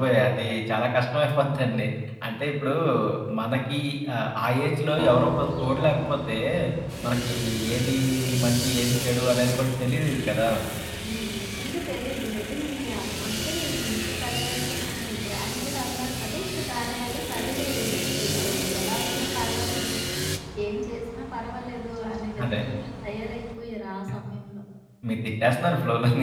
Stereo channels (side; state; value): both; identical; correlation 1.00